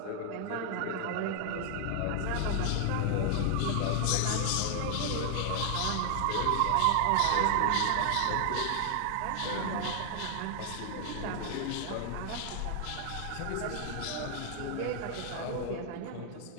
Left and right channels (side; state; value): both; different; correlation 0.00